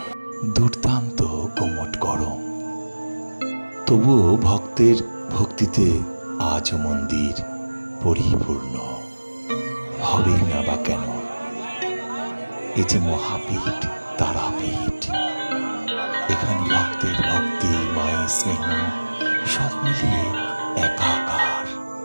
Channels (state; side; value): inverted; both; correlation -1.00